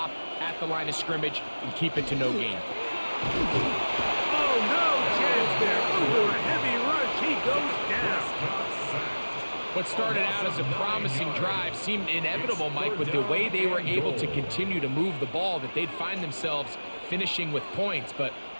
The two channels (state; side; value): inverted; both; correlation -1.00